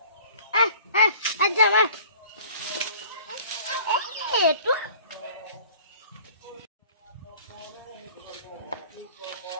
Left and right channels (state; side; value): inverted; both; correlation -0.48